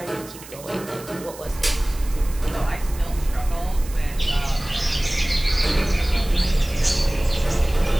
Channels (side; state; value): right; noise; hiss, 17 dB below the sound